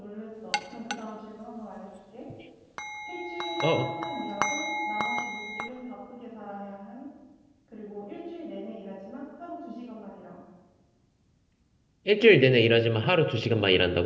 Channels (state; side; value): identical; both; correlation 1.00